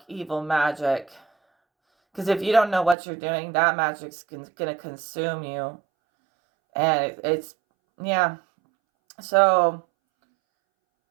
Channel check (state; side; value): drops out; left; at 3.0 s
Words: evil magic. Because if you don't know what you're doing, that magic's gonna consume you. And yeah. So